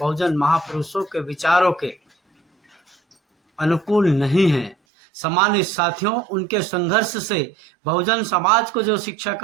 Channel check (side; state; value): left; drops out; at 4.8 s